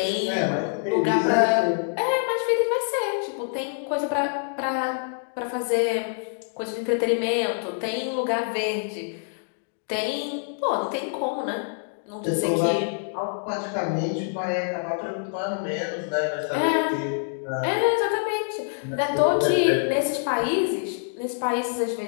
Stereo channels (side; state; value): right; silent; digital silence